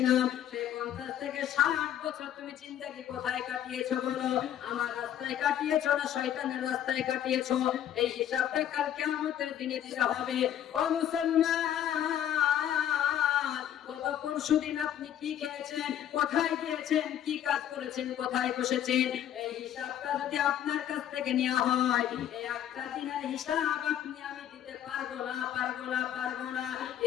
সেই 50 থেকে 60 বছর তুমি জিন্দেগি কোথায় কাটিয়েছো বলো? আমার রাস্তায় কাটিয়েছো না শয়তানের রাস্তায় কাটিয়েছো? এই হিসাবটা কাল কিয়ামতের দিনে দিতে হবে। ও মুসলমান, গত পরশুদিন আপনি কি খেয়েছেন, কোথায় গিয়েছেন, কি কাজ করেছেন, কোথায় বসেছেন, এই হিসাবটা যদি আপনার কাছ থেকে নেওয়া হয়, এই একটা দিনের হিসাব আপনি আমি দিতে পারবো না।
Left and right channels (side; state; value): right; quieter; 10.7 dB